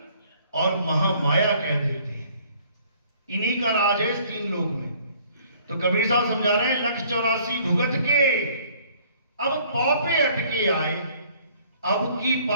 और महामाया कह देते हैं। इन्हीं का राज है इस 3 लोक में। तो कबीर साहब समझा रहे हैं 184 भुगत के अब पौपे अटके आए, अब की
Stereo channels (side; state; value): both; inverted; correlation -0.58